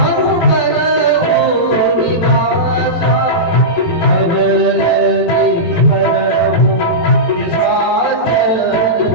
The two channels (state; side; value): late; right; 18 ms